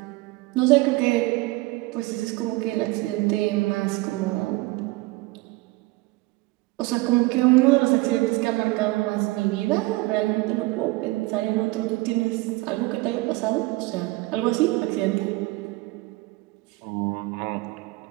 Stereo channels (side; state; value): left; quieter; 21.8 dB